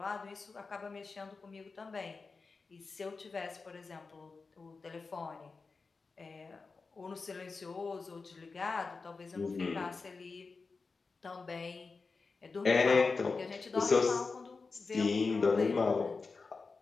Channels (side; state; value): right; quieter; 4.3 dB